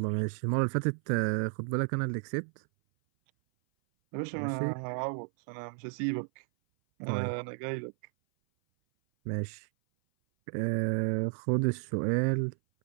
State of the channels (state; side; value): silent; left; 56 dB below the other